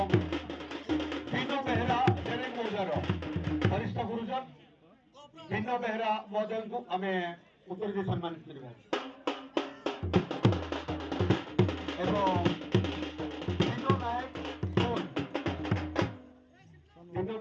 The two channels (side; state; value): both; identical; correlation 1.00